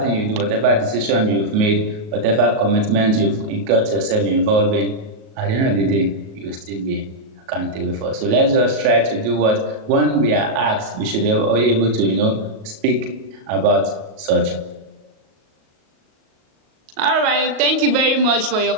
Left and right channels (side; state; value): left; late; 38 ms